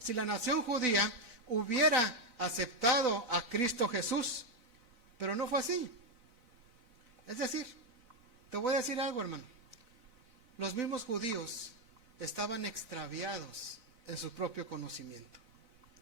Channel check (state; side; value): late; left; 4.0 ms